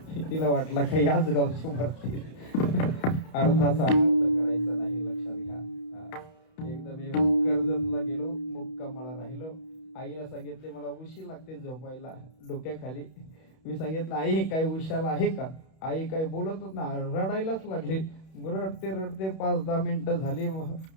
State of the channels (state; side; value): late; right; 31 ms